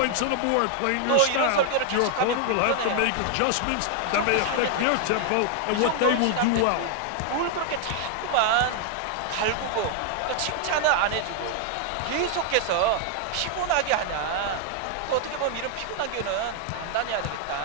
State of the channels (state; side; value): different; both; correlation 0.00